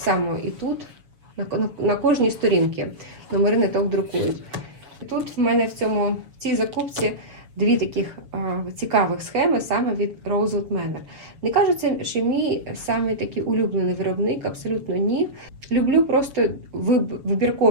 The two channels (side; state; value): left; late; 7.1 ms